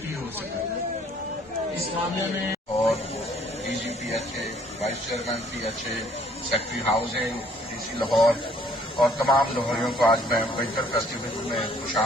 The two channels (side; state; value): both; normal; correlation 0.60